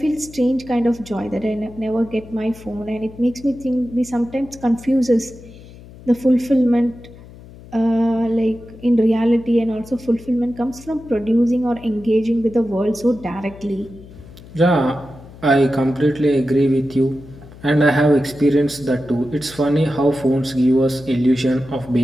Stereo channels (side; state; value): left; noise; hum, 19 dB below the sound